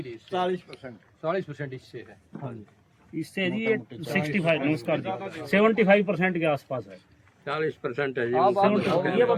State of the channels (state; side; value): identical; both; correlation 1.00